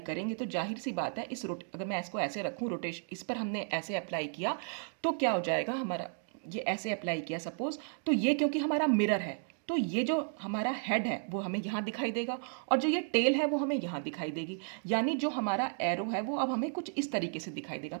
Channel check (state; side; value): silent; left; 55 dB below the other